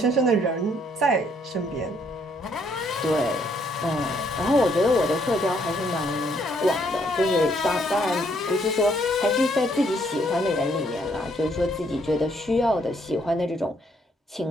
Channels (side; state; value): both; normal; correlation 0.69